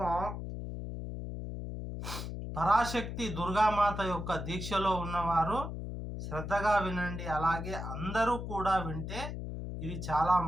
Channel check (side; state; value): left; noise; hum, 6 dB below the sound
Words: పరాశక్తి దుర్గామాత యొక్క దీక్షలో ఉన్నవారు శ్రద్ధగా వినండి. అలాగే అందరూ కూడా వింటే ఇది చాలా